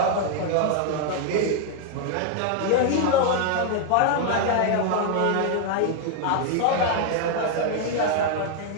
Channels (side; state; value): both; different; correlation 0.00